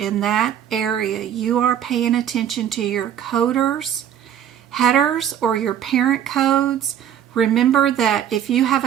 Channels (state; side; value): quieter; left; 9.9 dB